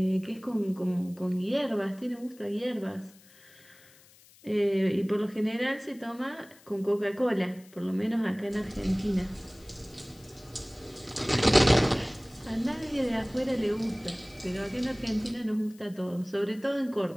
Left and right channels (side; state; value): left; noise; hiss, 26 dB below the sound